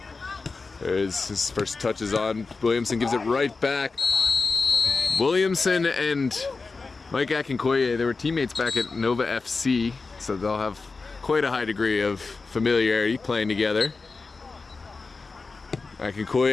There's his first touches on. Williamson gives it right back. Williamson and Mike Akinkoye, they were teammates back at Nova FC, so they'll have quite a high degree of familiarity playing together.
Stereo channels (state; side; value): quieter; right; 4.1 dB